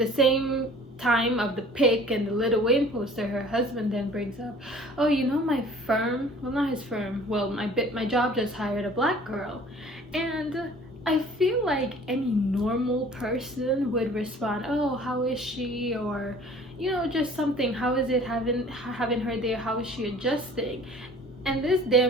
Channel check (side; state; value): both; normal; correlation 0.49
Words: time of the pic and the Lil Wayne poster, her husband then brings up, oh, you know, my firm, well, not his firm, well, my job just hired a black girl. And I feel like any normal person would respond, oh, how is she? Or, you know, just something, how is it having her there? How is she adjusting? And this